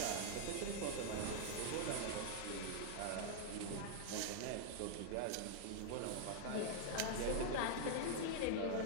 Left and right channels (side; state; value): both; different; correlation -0.01